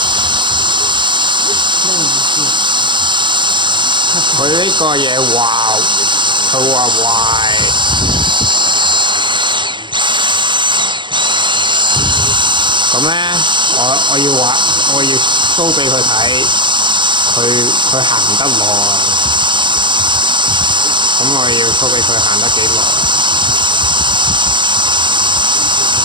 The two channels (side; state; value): left; late; 0.23 ms